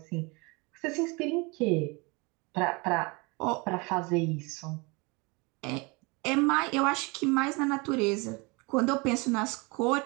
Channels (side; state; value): left; quieter; 27.8 dB